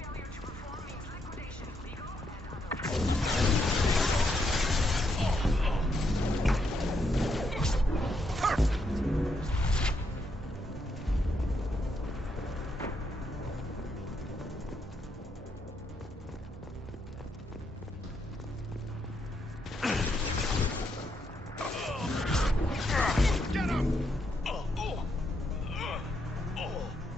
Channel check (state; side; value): normal; both; correlation 0.78